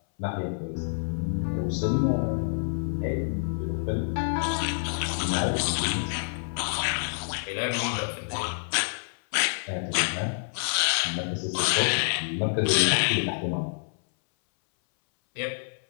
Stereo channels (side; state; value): right; silent; 60 dB below the other